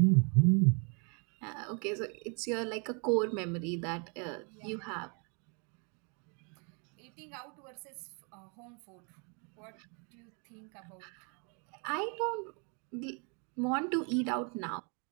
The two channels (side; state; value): left; quieter; 36.0 dB